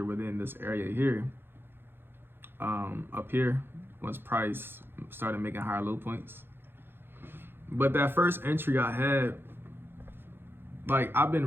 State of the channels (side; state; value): left; late; 0.10 ms